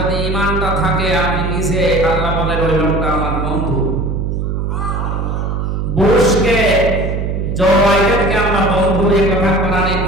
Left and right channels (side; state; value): right; noise; hum, 2 dB below the sound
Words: ঈমানটা থাকে, আপনি নিজে আল্লাহ বলেন ওই লোকটা আমার বন্ধু। বুশকে, জো বাইডেনকে আমরা বন্ধু, এই কথা কোরআনে